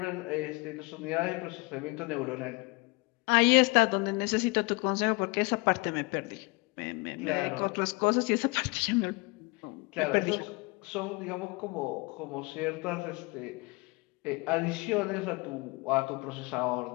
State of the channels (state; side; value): quieter; right; 26.6 dB